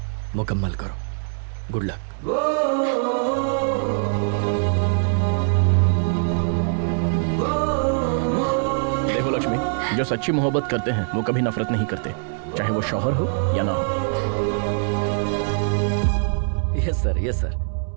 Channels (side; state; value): left; silent; digital silence